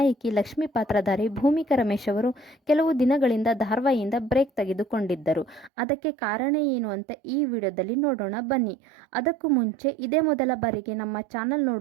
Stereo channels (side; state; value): left; drops out; at 5.7 s